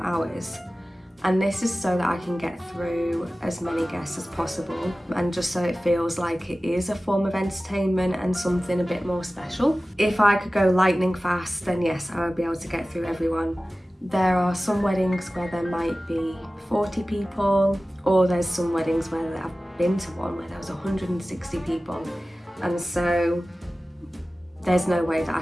hours, and this is so that I can get through as many guests as possible, and just so it feels like it is a form of entertainment and something a bit more special. If I could go lightning fast, then yes, I would be able to get through everyone. There are some weddings where there might be 40 people, or there's some weddings where I've been to one where there was 160 people, and so there's no way that I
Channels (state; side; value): normal; both; correlation 0.96